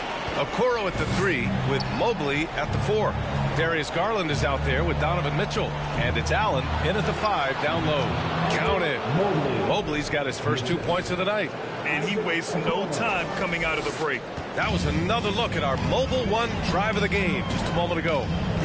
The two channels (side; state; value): both; identical; correlation 1.00